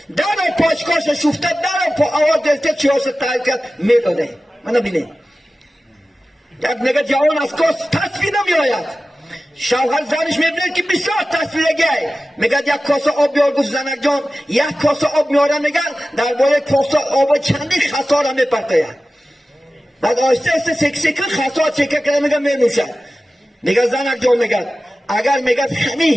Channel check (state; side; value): normal; both; correlation 0.95